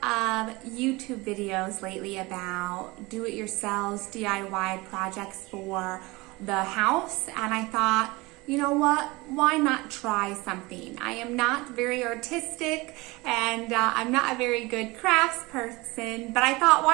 of YouTube videos lately about do-it-yourselves DIY projects for the house, and I thought, you know what, why not try something? I am not very artistic and I'm not a very good crafts person, but I thought,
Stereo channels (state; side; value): quieter; left; 23.0 dB